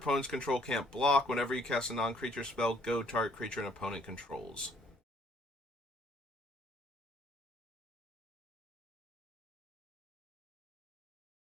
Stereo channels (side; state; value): both; normal; correlation 0.63